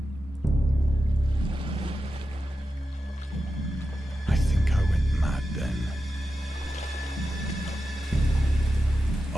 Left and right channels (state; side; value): normal; both; correlation 0.91